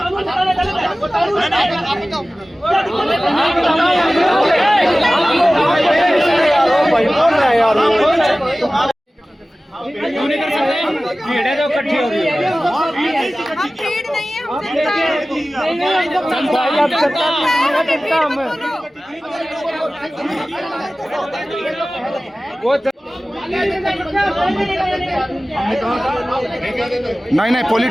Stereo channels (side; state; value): both; normal; correlation 0.97